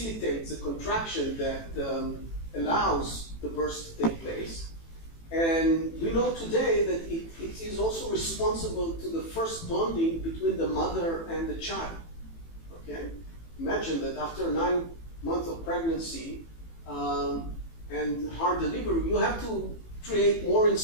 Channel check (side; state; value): right; late; 18 ms